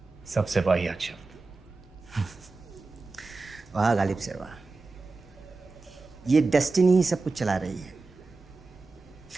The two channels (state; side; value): quieter; left; 3.7 dB